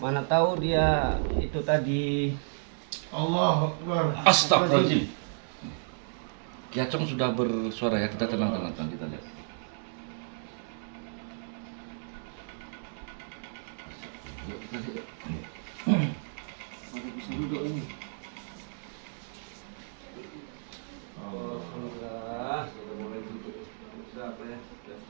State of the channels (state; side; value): silent; left; digital silence